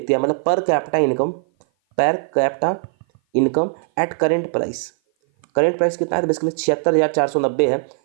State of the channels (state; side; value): silent; left; 56 dB below the other